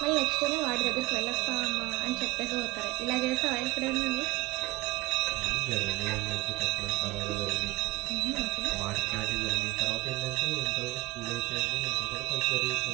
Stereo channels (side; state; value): left; quieter; 20.7 dB